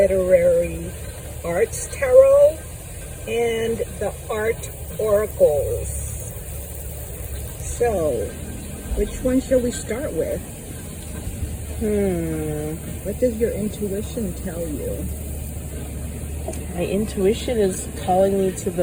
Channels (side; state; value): both; identical; correlation 1.00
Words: Arts Tarot and the Art Oracles. So, which one shall we start with? What does your intuition tell you? My intuition is calling me to